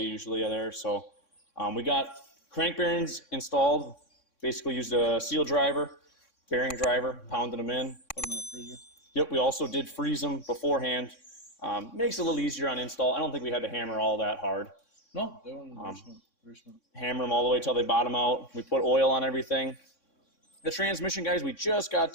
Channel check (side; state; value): right; late; 3.6 ms